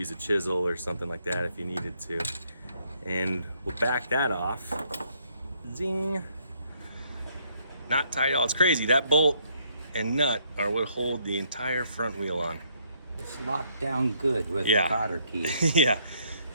a chisel or something like that if you needed to. And we'll back that off. Zing. Not tight at all. It's crazy. That bolt and nut are what hold the entire front wheel on. It's locked down good with the cotter key. Yeah.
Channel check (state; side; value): inverted; both; correlation -0.69